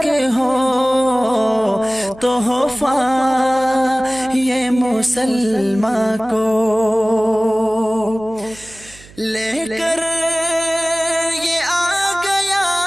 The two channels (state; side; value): noise; right; hum, 23 dB below the sound